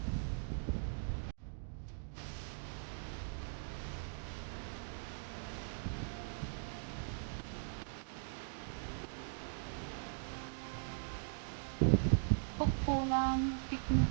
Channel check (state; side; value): silent; left; digital silence